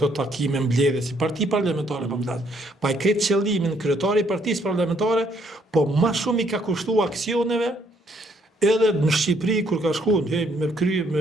takime mbledhje si parti parlamentare për mbledhje. Pa i kretë qëllimin kryetari i partisë parlamentare, po ma shumë i ka kushtu aksioneve, edhe në Shqipëri, kur ka shku,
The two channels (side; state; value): both; normal; correlation 0.68